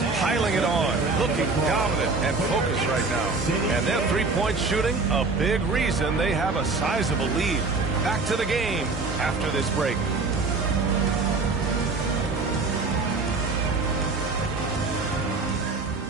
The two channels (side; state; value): left; quieter; 3.9 dB